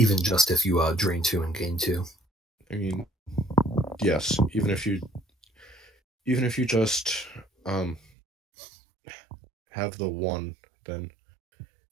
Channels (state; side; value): drops out; left; at 8.0 s